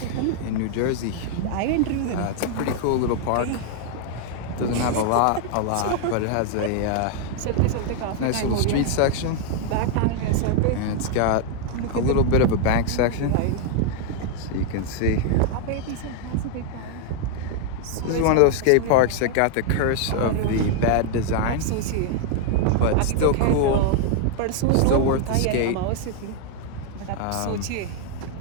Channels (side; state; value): both; different; correlation 0.00